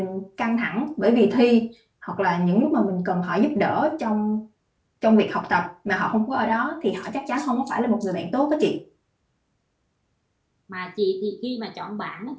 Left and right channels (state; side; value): identical; both; correlation 1.00